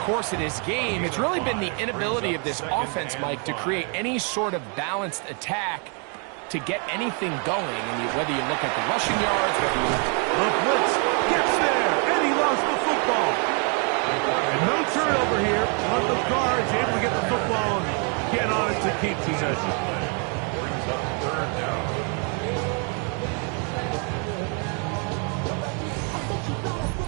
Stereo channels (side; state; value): left; quieter; 38.0 dB